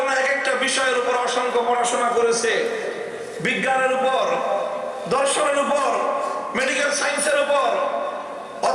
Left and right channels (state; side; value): identical; both; correlation 1.00